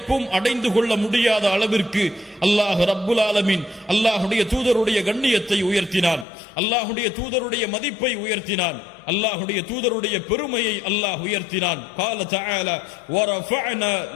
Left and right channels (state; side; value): drops out; right; at 6.2 s